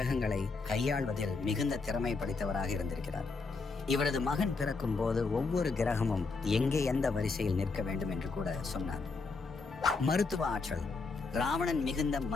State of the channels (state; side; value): quieter; right; 4.2 dB